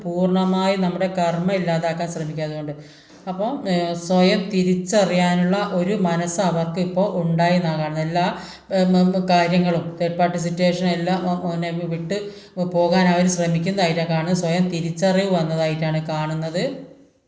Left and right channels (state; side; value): identical; both; correlation 1.00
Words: പൂർണ്ണമായി നമ്മുടെ കർമ്മ ഇല്ലാതാക്കാൻ ശ്രമിക്കുക. അതുകൊണ്ട് അപ്പോൾ സ്വയം തിരിച്ചറിയാനുള്ള ഒരു മനസ്സ് അവർക്ക് ഇപ്പോൾ ഉണ്ടായി എന്നാണ് കാണുന്നത്. എല്ലാ കാര്യങ്ങളും തേർഡ് പാർട്ടി സിറ്റുവേഷൻ എല്ലാം വിട്ട് പോകാൻ അവർ ശ്രമിക്കുന്നതായിട്ടാണ് കാണുന്നത്. സ്വയം തിരിച്ചറിവ് വന്നതായിട്ടാണ് കാണുന്നത്.